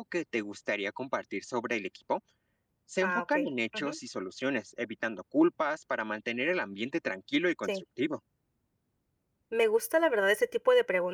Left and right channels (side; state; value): both; identical; correlation 1.00